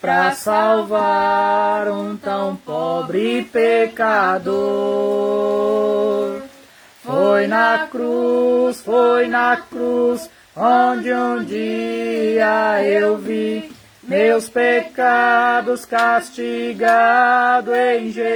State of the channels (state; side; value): identical; both; correlation 1.00